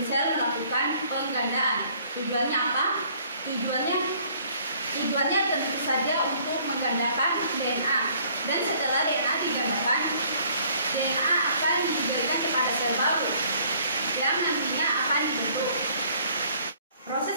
sel melakukan penggandaan. Tujuannya apa? Tujuannya tentu saja untuk menggandakan DNA. Dan setelah DNA digandakan, DNA akan diberikan kepada sel baru yang nantinya akan dibentuk. Proses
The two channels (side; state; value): both; inverted; correlation -0.60